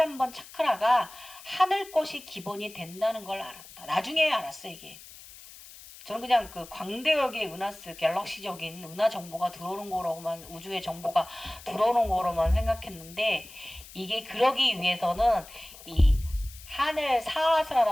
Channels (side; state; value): left; noise; hiss, 18 dB below the sound